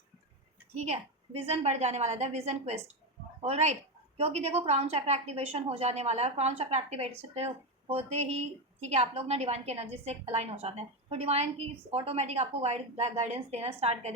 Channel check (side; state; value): both; normal; correlation 0.13